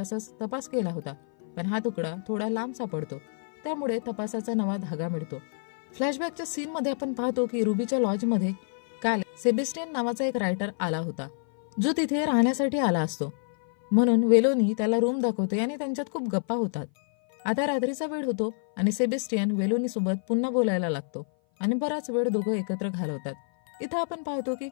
तपास केला होता, पण हा तुकडा थोडा लांब सापडतो, त्यामुळे तपासाचा नवा धागा मिळतो. फ्लॅशबॅकच्या सीनमध्ये आपण पाहतो की रुबीच्या लॉजमध्ये काल सेबेस्टियन नावाचा एक रायटर आला होता, जो तिथे राहण्यासाठी आला असतो. म्हणून वेलोनी त्याला रूम दाखवते आणि त्यांच्यात खूप गप्पा होतात. आता रात्रीचा वेळ होतो आणि सेबेस्टियन वेलोनी सोबत पुन्हा बोलायला लागतो आणि बराच वेळ दोघं एकत्र घालवतात. इथं आपण पाहतो की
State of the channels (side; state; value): right; silent; 56 dB below the other